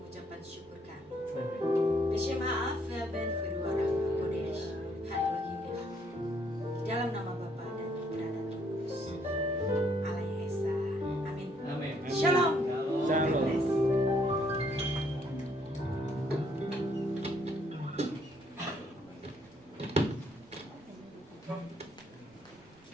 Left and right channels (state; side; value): noise; right; rumble, 29 dB below the sound